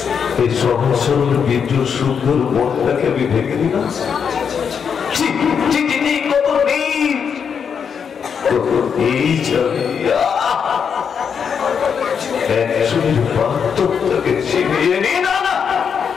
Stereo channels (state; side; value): quieter; right; 6.9 dB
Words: এই সহজ সরল বিদ্যুৎ সুন্দর মনটাকে আমি ভেঙে দিলাম। কত এই একজনের বাস্তবটাকে ছিনিয়ে নিয়ে না না